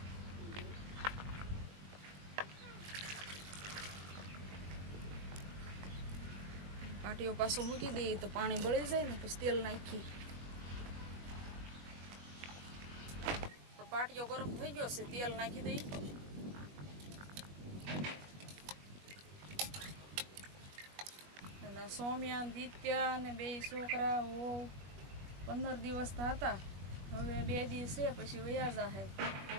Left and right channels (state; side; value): late; left; 21 ms